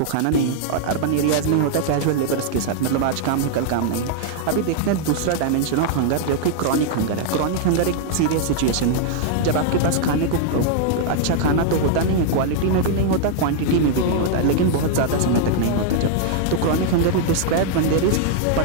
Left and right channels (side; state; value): both; different; correlation -0.01